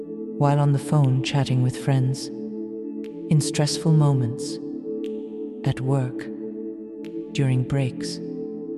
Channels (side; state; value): both; identical; correlation 1.00